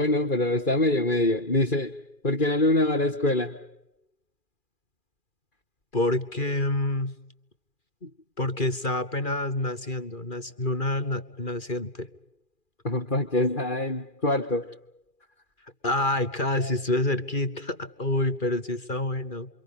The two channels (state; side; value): late; right; 2.4 ms